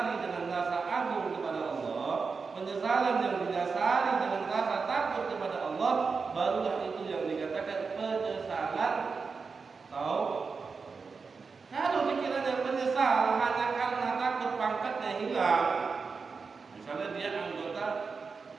dengan rasa agung kepada Allah, penyesalan yang didasari dengan rasa takut kepada Allah, barulah itu yang dikatakan penyesalan taubat. Kalau dikiranya menyesal hanya karena takut pangkatnya hilang, misalnya dia anggota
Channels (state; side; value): quieter; left; 4.9 dB